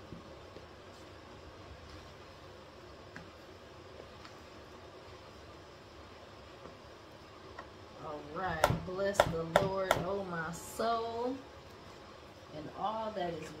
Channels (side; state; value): both; identical; correlation 1.00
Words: Alright. Bless the Lord, oh my soul, and all that is